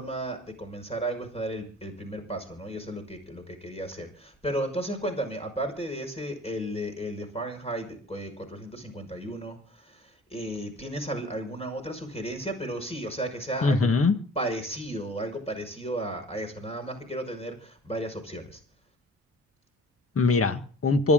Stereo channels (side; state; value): both; normal; correlation 0.45